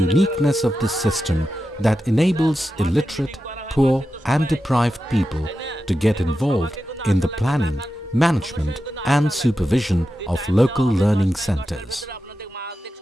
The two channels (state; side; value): normal; both; correlation 0.91